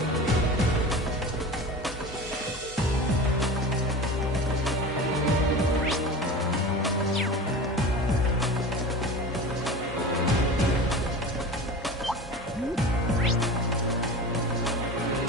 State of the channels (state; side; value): normal; both; correlation 0.32